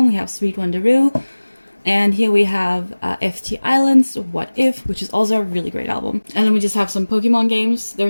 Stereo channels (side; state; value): both; inverted; correlation -1.00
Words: We have Sweet Wonderoo. And here we have FT Islands, What If, which is also a really great album. And then we just have some Pokemon games.